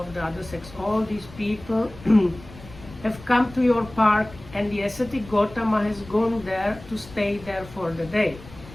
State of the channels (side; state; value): left; noise; rumble, 18 dB below the sound